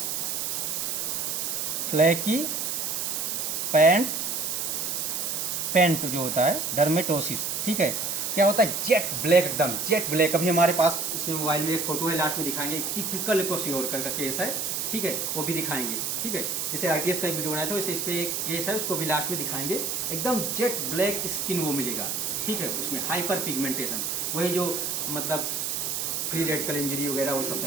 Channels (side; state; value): right; noise; hiss, 1 dB below the sound